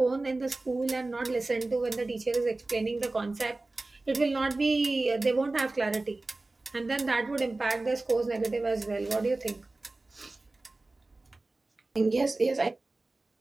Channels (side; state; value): left; quieter; 3.1 dB